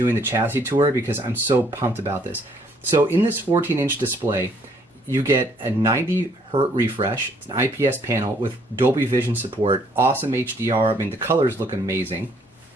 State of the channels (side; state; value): both; normal; correlation 0.65